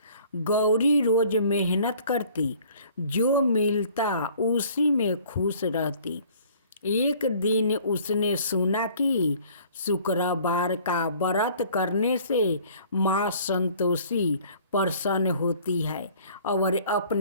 गौरी रोज मेहनत करती, जो मिलता उसी में खुश रहती। एक दिन उसने सुना कि शुक्रवार का व्रत करने से माँ संतोषी प्रसन्न होती है और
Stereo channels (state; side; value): inverted; both; correlation -0.53